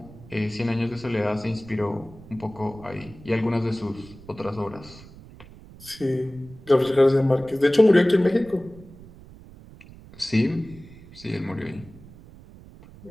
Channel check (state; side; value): noise; right; rumble, 20 dB below the sound